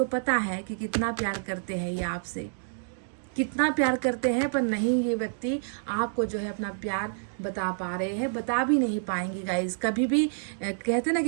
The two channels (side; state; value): left; silent; digital silence